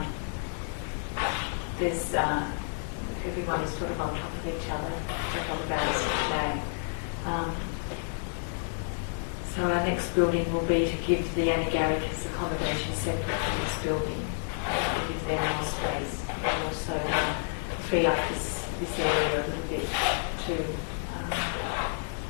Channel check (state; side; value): silent; right; digital silence